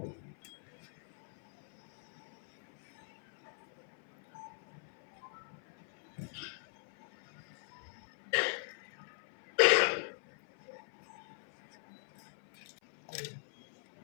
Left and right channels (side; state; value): right; silent; 51 dB below the other